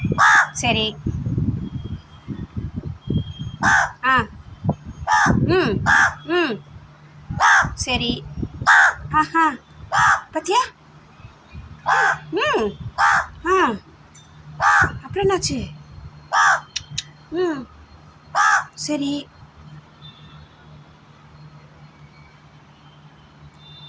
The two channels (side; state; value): both; identical; correlation 1.00